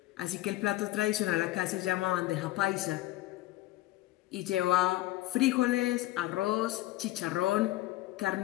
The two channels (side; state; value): right; quieter; 16.8 dB